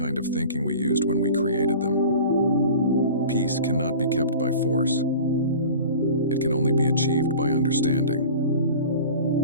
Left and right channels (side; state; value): both; inverted; correlation -0.39